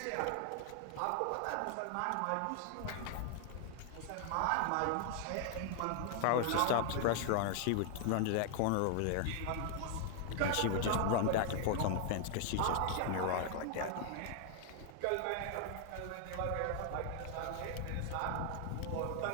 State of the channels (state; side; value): different; both; correlation 0.00